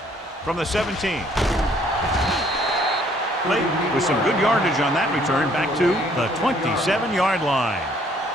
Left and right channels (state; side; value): normal; both; correlation 0.63